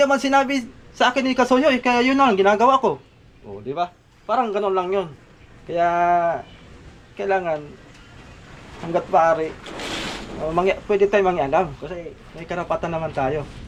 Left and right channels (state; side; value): identical; both; correlation 1.00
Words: sinabi sa akin ni Kasuyoy, kaya yun lang ginagawa ko. O, di ba? Parang ganun lang yun. Kaya, kailangan, hanggat maaari, pwede tayo mangialam. Kasi may karapatan naman tayo.